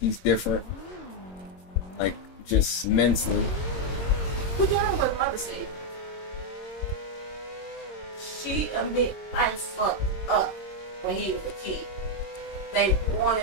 different. Like, just mentally. Well, you know what mother said? She admit I fucked up when he was a kid. They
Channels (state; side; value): late; right; 22 ms